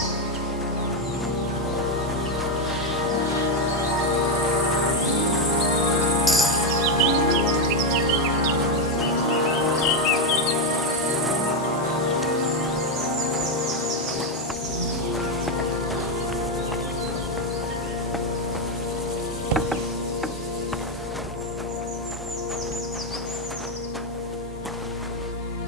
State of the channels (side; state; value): both; normal; correlation 0.05